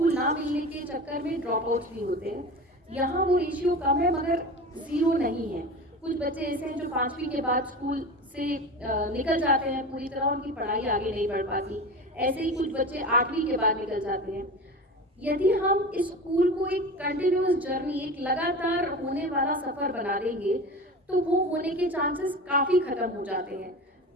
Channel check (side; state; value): both; normal; correlation 0.31